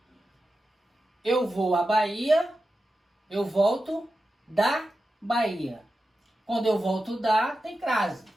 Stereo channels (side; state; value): both; normal; correlation 0.91